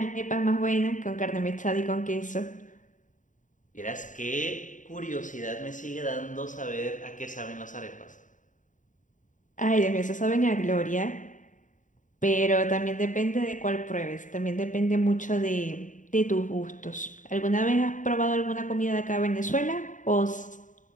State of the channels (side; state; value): right; late; 0.37 ms